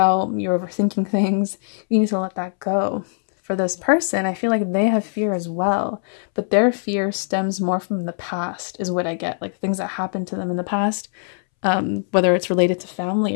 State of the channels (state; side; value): silent; right; 65 dB below the other